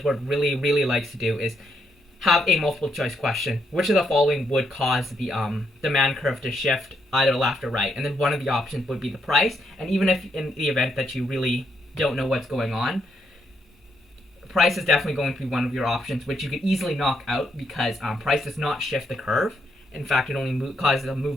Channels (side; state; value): both; normal; correlation 0.77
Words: Board really likes to do is have a multiple choice question. Which of the following would cause the demand curve to shift either left or right? And then one of the options would be the price. And even if in the event that you really don't know what's going on, price is definitely going to be one of your options, which you could easily knock out because price does not shift the curve. In fact, it only causes a